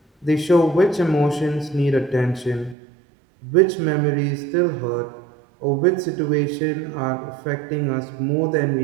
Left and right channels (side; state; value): left; drops out; at 2.8 s